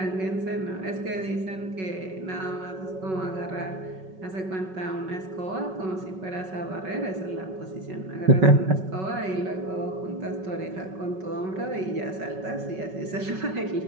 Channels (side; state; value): left; late; 5.3 ms